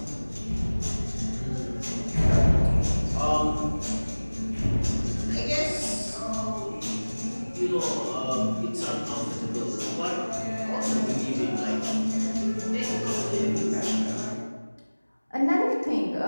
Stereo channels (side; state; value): both; inverted; correlation -1.00